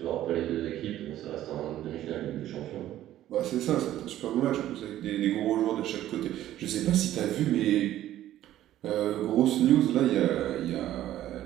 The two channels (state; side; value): quieter; left; 13.1 dB